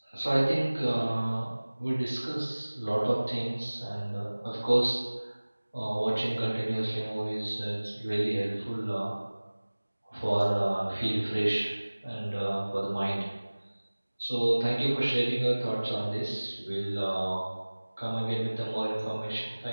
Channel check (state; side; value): inverted; both; correlation -1.00